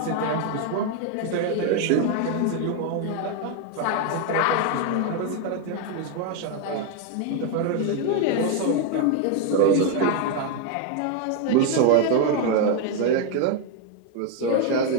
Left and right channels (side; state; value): both; different; correlation 0.01